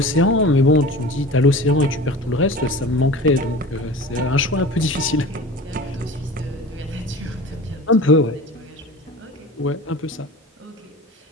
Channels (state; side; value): normal; both; correlation 0.36